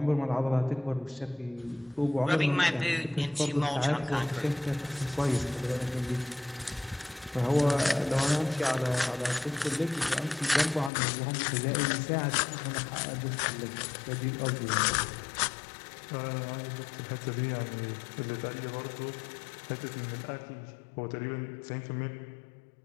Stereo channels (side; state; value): right; drops out; at 10.9 s